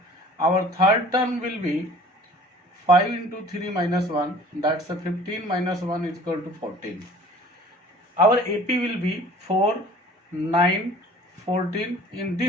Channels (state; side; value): normal; both; correlation 0.48